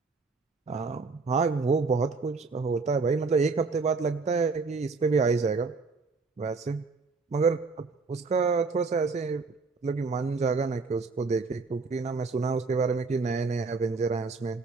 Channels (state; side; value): quieter; left; 4.3 dB